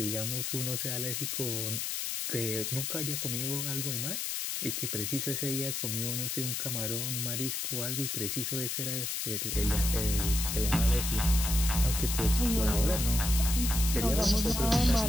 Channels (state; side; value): noise; left; hiss, 2 dB below the sound